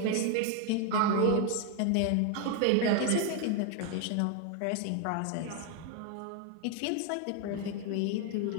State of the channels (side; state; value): both; different; correlation 0.01